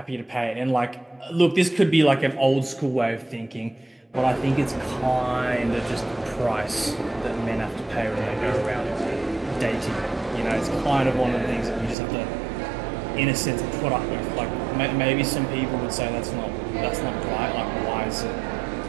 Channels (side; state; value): left; drops out; at 12.0 s